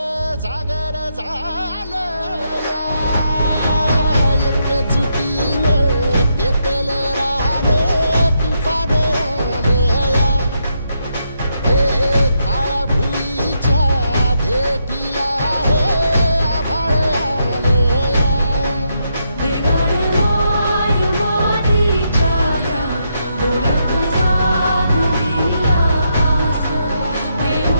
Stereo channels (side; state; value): both; inverted; correlation -0.79